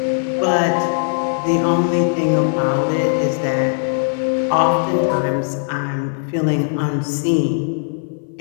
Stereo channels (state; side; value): silent; right; 57 dB below the other